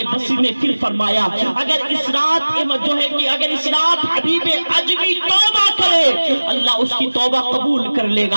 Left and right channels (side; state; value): both; inverted; correlation -1.00